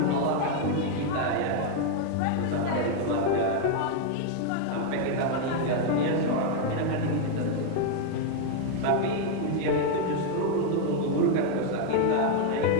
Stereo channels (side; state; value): both; different; correlation 0.00